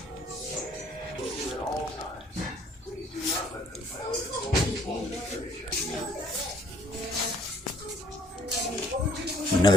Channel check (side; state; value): both; normal; correlation 0.62